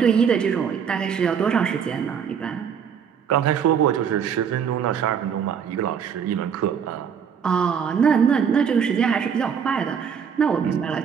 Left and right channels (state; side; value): quieter; left; 7.3 dB